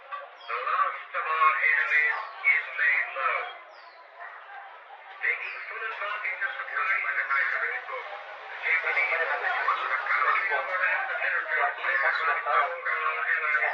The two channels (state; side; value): identical; both; correlation 1.00